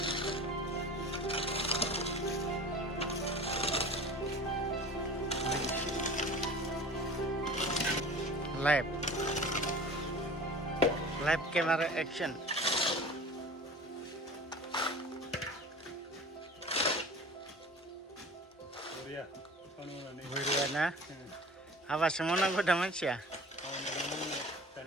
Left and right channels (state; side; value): normal; both; correlation 0.39